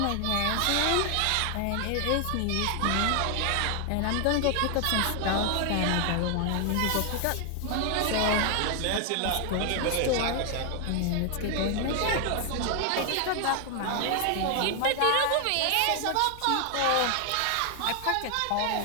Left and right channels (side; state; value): both; different; correlation 0.00